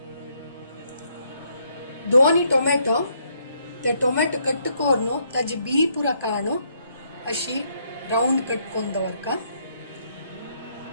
2 टोमॅटो, ते टोमॅटो कट कोरनो ताजी बी पुरा काणो अशी राउंड कट कोन दवरका.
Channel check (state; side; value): inverted; both; correlation -0.72